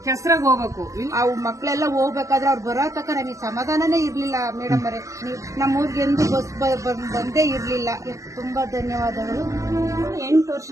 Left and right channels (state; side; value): late; left; 0.15 ms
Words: ಕೆಸರಾಗ ಹೋಗ್ಬೇಕು. ಅವು ಮಕ್ಕಳೆಲ್ಲ ಹೋಗ್ಬೇಕಾದ್ರೆ ಅವ್ರು ಬರೋ ತಕ್ಕ ನಮಗೆ ಸಮಾಧಾನನೇ ಇರ್ಲಿಲ್ಲ ಮೇಡಮ್ ಅವರೇ. ನಮ್ಮ ಊರಿಗೆ ಎಂದು ಬಸ್ ಬಂದೇ ಇರ್ಲಿಲ್ಲ. ತುಂಬಾ ಧನ್ಯವಾದಗಳು. 8 ವರ್ಷ